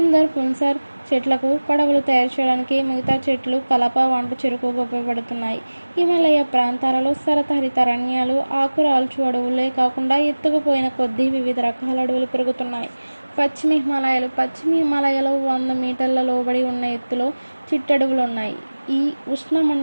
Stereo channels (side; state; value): both; inverted; correlation -1.00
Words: పున్సార్ చెట్లకు పడవలు తయారు చేయడానికి, మిగతా చెట్లు కలప, వంట చెరుకుగా ఉపయోగపడుతున్నాయి. హిమాలయ ప్రాంతాలలో శరతహరిత అరణ్యాలు, ఆకురాల్చు అడవులే కాకుండా ఎత్తుకుపోయిన కొద్దీ వివిధ రకాల అడవులు పెరుగుతున్నాయి. పశ్చిమ హిమాలయాలో 100 మీటర్ల లోబడి ఉన్న ఎత్తులో చిట్టడవులు ఉన్నాయి. ఈ